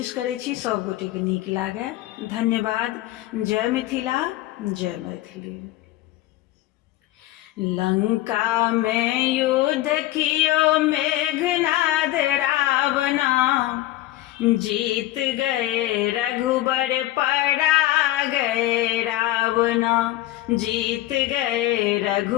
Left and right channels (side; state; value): right; quieter; 15.8 dB